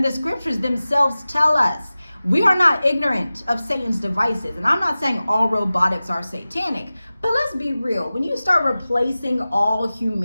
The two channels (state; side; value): inverted; both; correlation -0.96